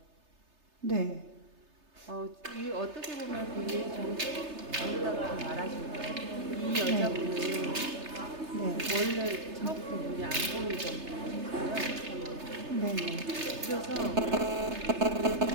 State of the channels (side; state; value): left; late; 3.3 ms